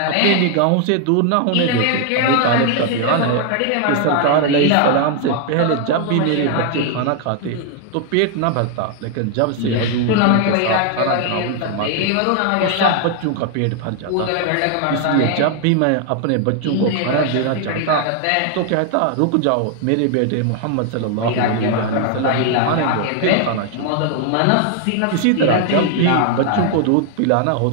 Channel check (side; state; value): both; different; correlation 0.00